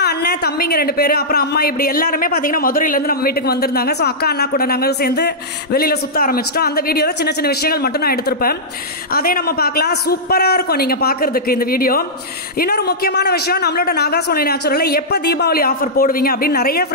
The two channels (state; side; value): normal; both; correlation -0.12